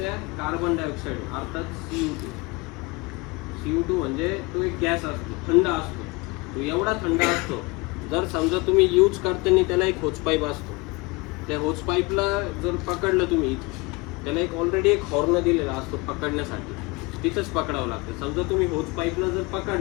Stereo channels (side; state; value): right; quieter; 25.7 dB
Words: कार्बन डायऑक्साईड अर्थात CO2 म्हणजे तो एक गॅस असतो, थंड असतो. तो एवढा थंड असतो, जर समजा तुम्ही यूज करताना त्याला एक होच पाईप असतो, त्या होच पाईपला जर पकडलं तुम्ही, त्याला एक ऑलरेडी एक हॉर्न दिलेला असतो पकडण्यासाठी, तिथंच पकडावं लागतं. समजा तुम्ही होच पाईपला जर